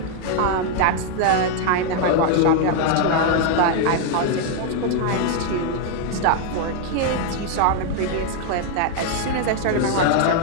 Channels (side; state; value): both; different; correlation 0.00